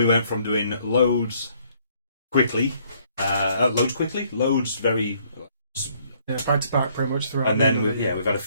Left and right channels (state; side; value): inverted; both; correlation -0.65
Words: went from doing loads very back to back pretty much throughout. and then we've had a